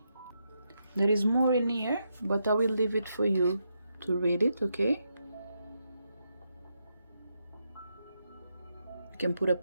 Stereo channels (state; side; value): inverted; both; correlation -0.82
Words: There is more in here, but I will leave it for you to read it, okay? You can put a